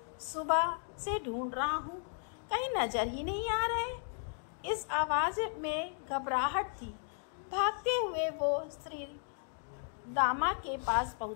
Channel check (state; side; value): silent; right; 54 dB below the other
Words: सुबह से ढूंढ रहा हूँ, कहीं नजर ही नहीं आ रहे। इस आवाज में घबराहट थी। भागते हुए वो श्री दामा के पास